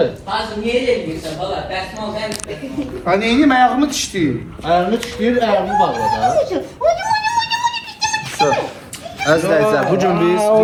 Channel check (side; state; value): both; identical; correlation 1.00